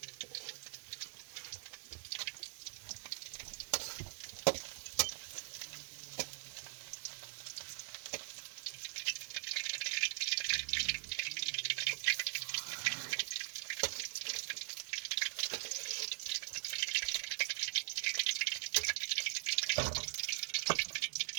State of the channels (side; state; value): left; silent; digital silence